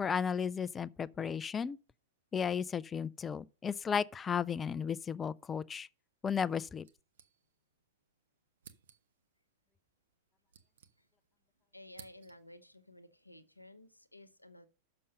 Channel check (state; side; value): quieter; right; 6.6 dB